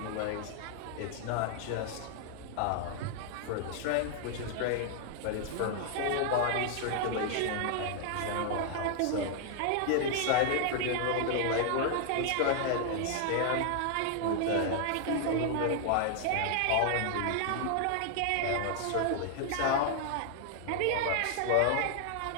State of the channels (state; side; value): different; both; correlation 0.00